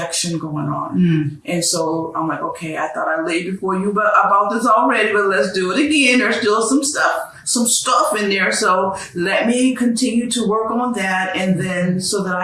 going on. And so I'm like, okay, I thought I laid before you about this already, but let's do it again. There's still some stuff in there. So let me continue to work on that, and then so that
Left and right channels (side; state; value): both; identical; correlation 1.00